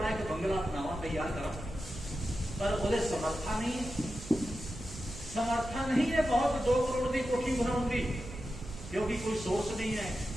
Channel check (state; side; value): noise; right; hum, 13 dB below the sound